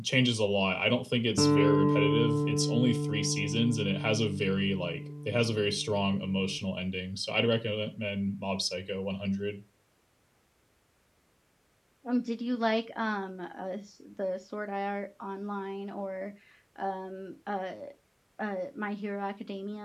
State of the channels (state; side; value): identical; both; correlation 1.00